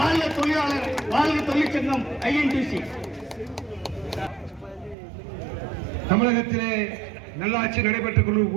தொழிலாளர், வாழ்க தொழிற்சங்கம் ஐஎன்டிசி. தமிழகத்திலே நல்லாட்சி நடைபெற்றுக்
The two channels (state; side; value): drops out; left; at 5.0 s